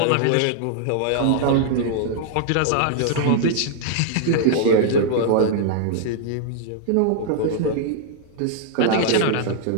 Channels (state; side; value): different; both; correlation -0.01